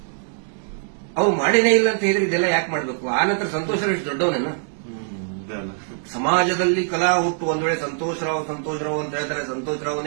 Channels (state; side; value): silent; left; digital silence